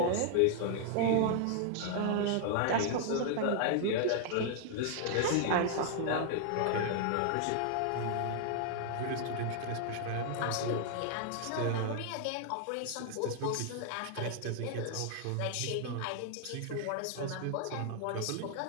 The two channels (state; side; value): different; both; correlation 0.00